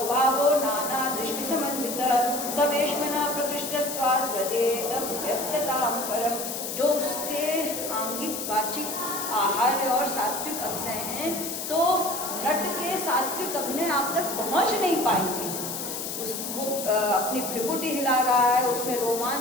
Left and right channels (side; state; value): left; noise; hiss, 5 dB below the sound